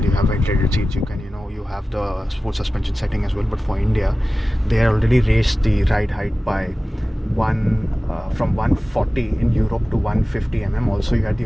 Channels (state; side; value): normal; both; correlation 0.96